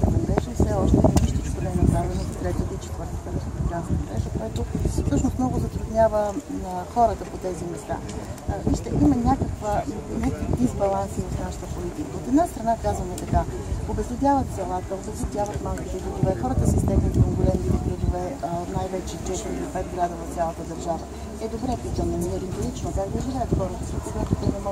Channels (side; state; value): both; identical; correlation 1.00